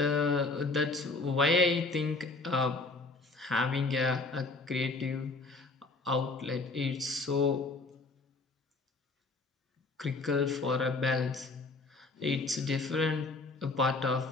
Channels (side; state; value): right; quieter; 3.6 dB